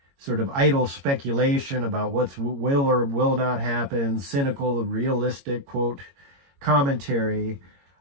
sort of idle speculation about what will or will not happen, cynical, realistic, quote, commentary.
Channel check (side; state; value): left; late; 22 ms